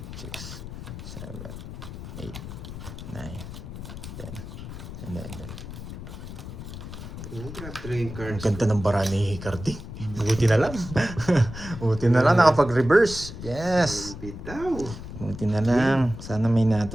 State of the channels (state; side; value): noise; left; rumble, 10 dB below the sound